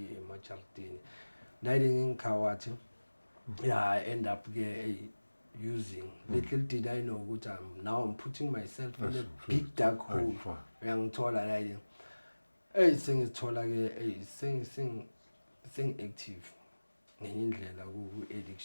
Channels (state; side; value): inverted; both; correlation -1.00